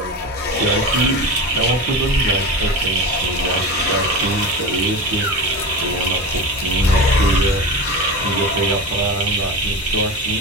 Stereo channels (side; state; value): both; normal; correlation 0.26